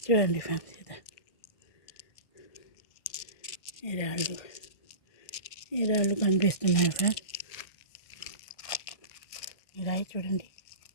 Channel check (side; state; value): right; late; 1.6 ms